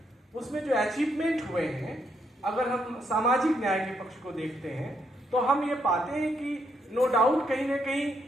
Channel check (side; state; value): both; normal; correlation 0.76